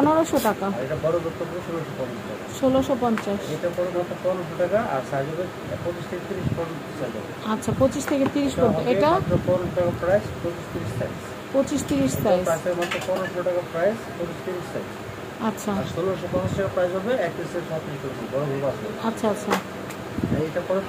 টাকা। আর এটা বড় করতে হবে 1650 টাকা। 1650। এটা পড়বে মাত্র 1500 টাকা, আর সাইজ হবে 25 থেকে 30 ফটো সাইজ হবে। আচ্ছা, 25 থেকে 30 পর্যন্ত। এটা মাত্র 1500 টাকা প্রাইস, 25-30 সাইজ। 25-30 সাইজ। প্রাইস হবে মাত্র 1500 টাকা প্রাইস, 25-30 সাইজ। আচ্ছা, আর 1650 টাকা প্রাইস হবে 31 থেকে 36 পর্যন্ত বড় গ্রুপ আছে। আচ্ছা আচ্ছা এইটা পরে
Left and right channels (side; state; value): both; identical; correlation 1.00